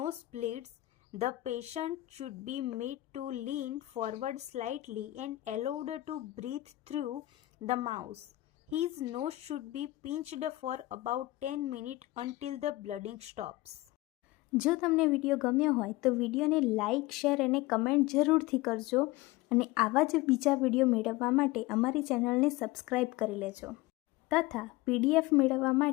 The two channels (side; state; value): right; quieter; 18.3 dB